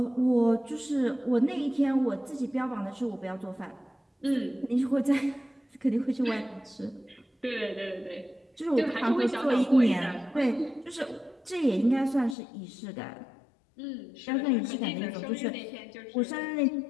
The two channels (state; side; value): drops out; right; at 12.4 s